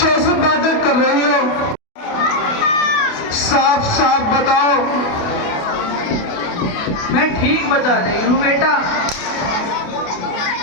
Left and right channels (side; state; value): right; late; 28 ms